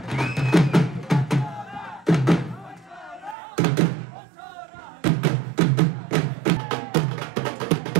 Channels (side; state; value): left; drops out; at 3.4 s